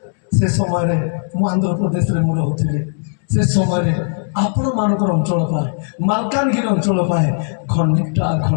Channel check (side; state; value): right; silent; digital silence